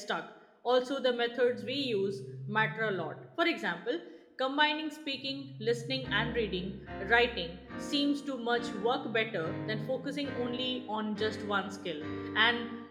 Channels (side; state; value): both; identical; correlation 1.00